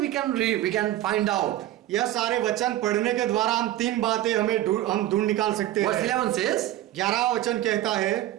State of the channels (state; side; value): quieter; left; 14.0 dB